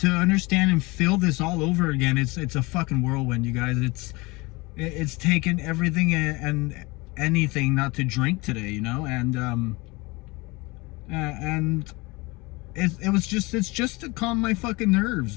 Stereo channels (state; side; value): quieter; right; 24.2 dB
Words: understand and feel this all over again, it's a fucking whirlwind, you guys. It's taken everything and anything not to drink today, you know. And it's just to calm my fucking nerves,